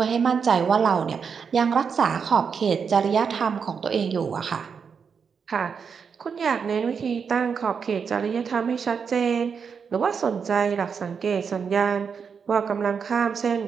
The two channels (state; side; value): quieter; left; 6.2 dB